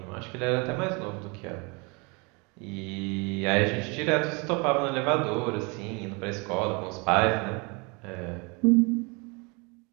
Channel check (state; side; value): quieter; left; 29.8 dB